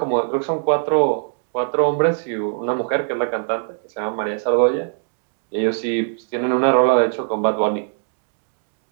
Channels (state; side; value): silent; left; 65 dB below the other